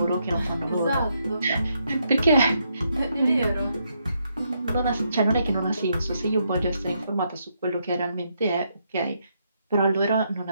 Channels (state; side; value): inverted; both; correlation -0.78